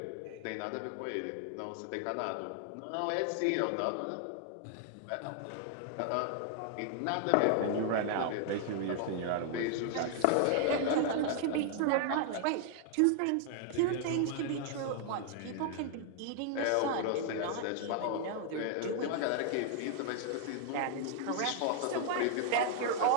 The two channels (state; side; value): different; both; correlation 0.00